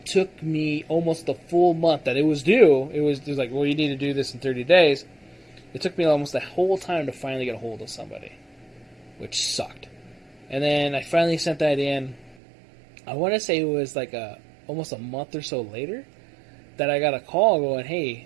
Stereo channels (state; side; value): drops out; left; at 12.4 s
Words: took me almost the full month that it was due. It was like, well, you need to do this in 30 days. It took me almost the whole time to finally get a hold of somebody, which sucked. And then I finally sent that in. I want to say it was like almost a month or so later that I got a call going,